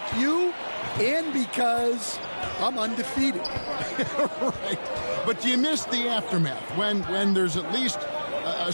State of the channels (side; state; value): both; inverted; correlation -1.00